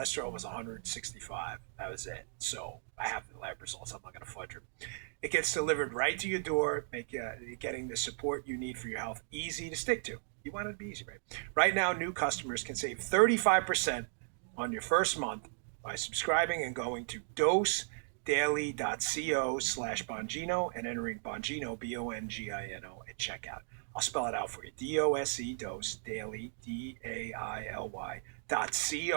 was 165. That was it. So I have the lab results. I'm not going to fudge them. It gets delivered right to your door, getting the support you need for your health easy to stick to. You want it to be easy, right? Right now, new customers can save 35% on your first month by subscribing and going to dosedaily.co/Bongino and entering Bongino, Bongino, at checkout. I'll spell it out for you. DOSE, Dose, Daily,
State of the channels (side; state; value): left; silent; digital silence